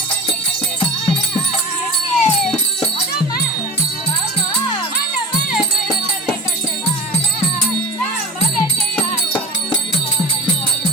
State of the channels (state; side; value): normal; both; correlation 0.36